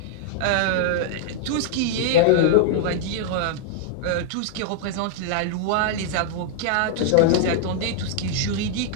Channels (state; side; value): different; both; correlation -0.01